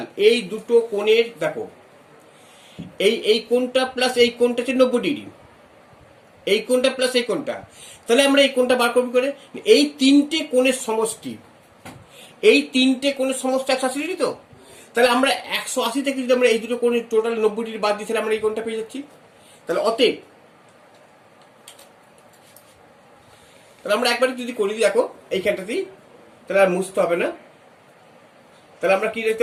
এই দুটো কোণের দেখো এই কোণটা প্লাস এই কোণটা হচ্ছে 90 ডিগ্রি, এই কোণটা প্লাস এই কোণটা, তাহলে আমরা এই কোণটা বার করবো করে এই তিনটে কোণের সমষ্টি, এই তিনটে কোণের সমষ্টি 180 ডিগ্রি, তো তাহলে আমরা 180 থেকে যদি আমরা এই দুটো কোণের টোটাল 90 ডিগ্রি বাদ দিই তাহলে আমরা এই কোণটা পেয়ে যাচ্ছি। তাহলে অতএব তাহলে আমরা একবার যদি করি দেখো এইখানটাতেই, তাহলে আর মুছতে হবে না। তাহলে আমরা কি দেখতে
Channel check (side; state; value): both; identical; correlation 1.00